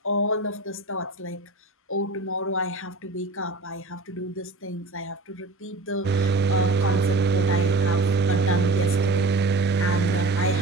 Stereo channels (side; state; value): left; quieter; 3.1 dB